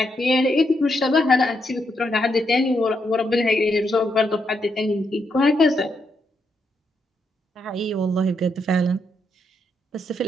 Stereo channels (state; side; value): normal; both; correlation 0.80